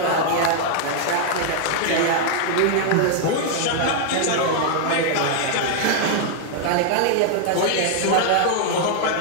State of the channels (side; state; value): both; different; correlation 0.00